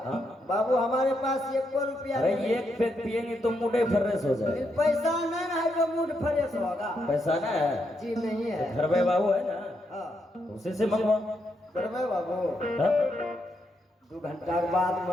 हाँ बाबू हमारे पास एक रुपया अरे नहीं। एक पैक पियेंगे तो मुंडे फर्रेस हो जाए। पैसा नहीं है जो मूड फ्रेश होगा। पैसा ना है? जी नहीं है। घर में बाबू है ना हाँ उसी से मंगवा। करवे बाबू हाँ? 2 घंटा के बाद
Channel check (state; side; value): normal; both; correlation 0.80